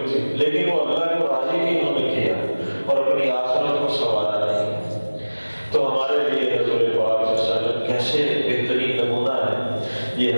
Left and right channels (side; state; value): both; inverted; correlation -1.00